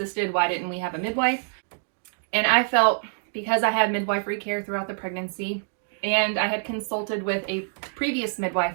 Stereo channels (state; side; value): silent; left; digital silence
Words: Why didn't we have a midwife? And I felt because I had midwifery care throughout the pregnancy, and I had consulted with a previous